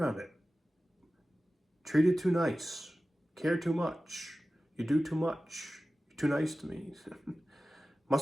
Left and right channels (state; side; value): normal; both; correlation 0.95